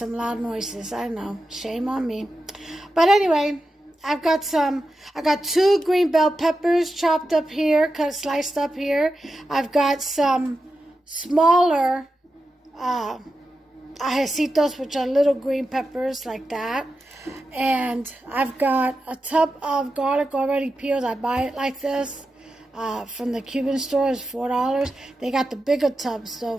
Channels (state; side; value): normal; both; correlation 0.90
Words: loud noises. I know, shame on me. But anyway, I got two green bell peppers chopped up here, sliced up here. I've got some smaller ajecitos, which are little green peppers like that. And I've got a tub of garlic already peeled. I buy it like this from the Cuban store. It's $4. They got the bigger tubs though